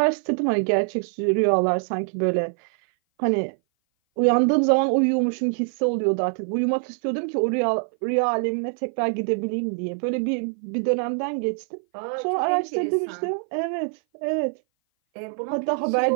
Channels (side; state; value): left; silent; 58 dB below the other